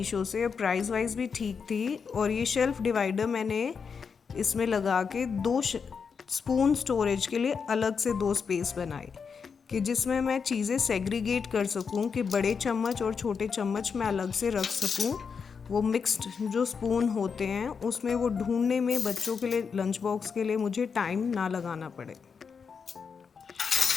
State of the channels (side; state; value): right; quieter; 5.9 dB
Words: से, प्राइस वाइज भी ठीक थी। और ये शेल्फ़ डिवाइडर मैंने इसमें लगा के 2 स्पून स्टोरेज के लिए अलग से 2 स्पेस बनाए कि जिसमें मैं चीज़ें सेग्रीगेट कर सकूं कि बड़े चम्मच और छोटे चम्मच मैं अलग से रख सकूं। वो मिक्स्ड जो स्पून होते हैं उसमें वो ढूंढने में बच्चों के लिए लंच बॉक्स के लिए मुझे टाइम ना लगाना पड़े।